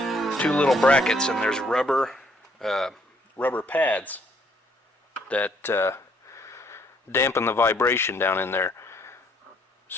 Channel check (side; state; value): both; normal; correlation 0.67